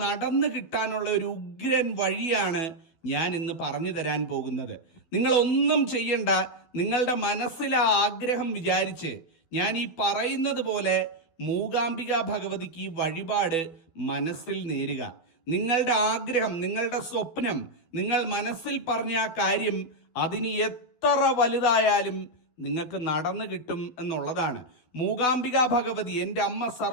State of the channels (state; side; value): late; right; 12 ms